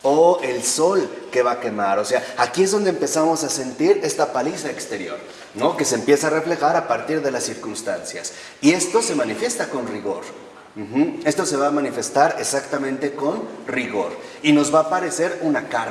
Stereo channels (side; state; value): both; identical; correlation 1.00